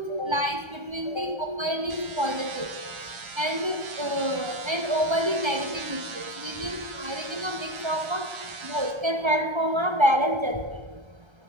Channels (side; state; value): left; late; 1.3 ms